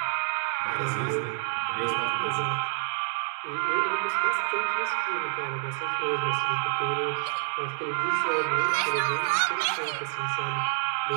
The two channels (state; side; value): silent; left; digital silence